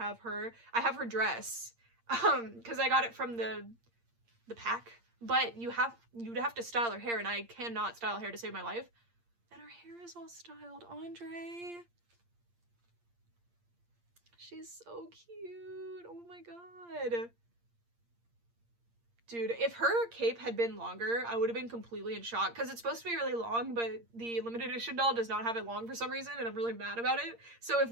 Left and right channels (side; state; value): left; late; 8.6 ms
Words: her. I have her dress because I got it from the pack, but you'd have to style her hair, and I cannot style hair to save my life. And her hair is all styled. Andre, she's so cute. Oh my god. Dude, if her cape had been longer, I would have been completely in shock, because it's supposed to be really long, but the limited edition doll does not have it long for some reason, and I'm really mad about it. So if